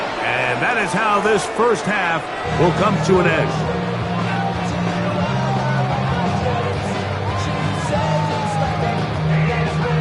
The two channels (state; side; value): identical; both; correlation 1.00